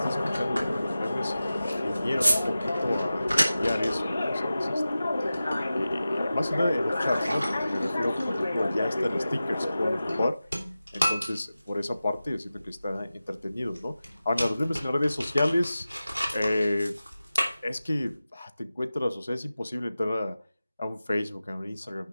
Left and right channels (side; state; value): both; inverted; correlation -0.95